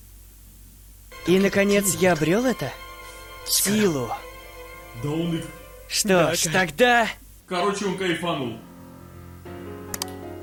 И, наконец, я обрел это? Силу. Да он их... Что ж, тогда... Короче, он кайфанул.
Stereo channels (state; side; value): identical; both; correlation 1.00